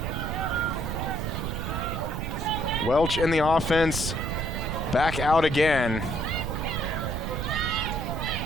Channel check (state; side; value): noise; right; rumble, 3 dB below the sound